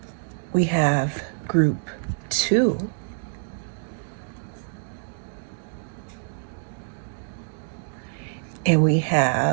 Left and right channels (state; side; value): silent; left; digital silence